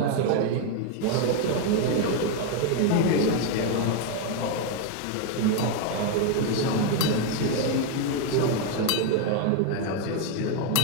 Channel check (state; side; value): different; both; correlation 0.01